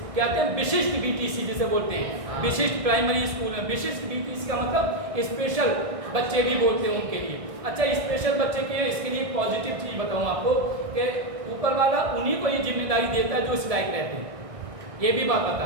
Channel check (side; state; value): left; late; 1.7 ms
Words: हैं विशिष्ट BTC जिसे बोलते हैं, विशिष्ट प्राइमरी स्कूल में। विशिष्ट BTC का मतलब स्पेशल बच्चे भी बोलते हैं उनके लिए। अच्छा, स्पेशल बच्चे के इसके लिए एक पॉजिटिव चीज़ बताऊँ आपको कि ऊपर वाला उन्हीं को ये जिम्मेदारी देता है जो इस लायक रहते हैं। ये भी बात बता